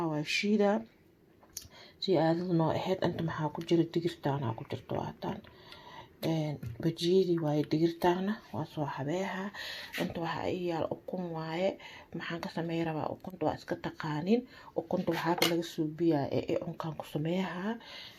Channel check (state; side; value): identical; both; correlation 1.00